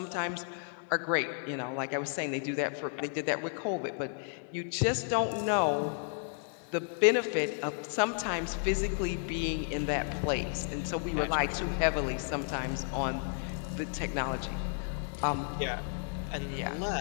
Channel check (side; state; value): right; silent; 56 dB below the other